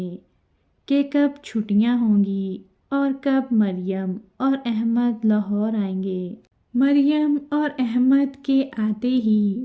کہ کب چھٹیاں ہوں گی اور کب مریم اور احمد لاہور آئیں گے۔ مریم اور احمد کے آتے ہی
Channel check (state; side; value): identical; both; correlation 1.00